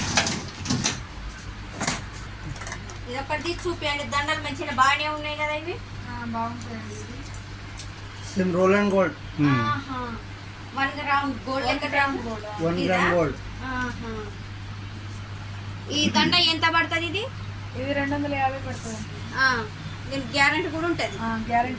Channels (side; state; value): both; identical; correlation 1.00